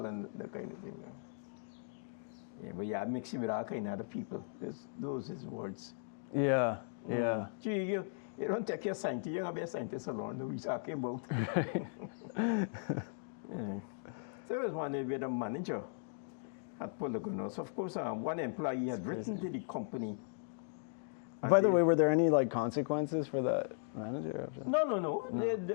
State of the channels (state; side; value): silent; right; digital silence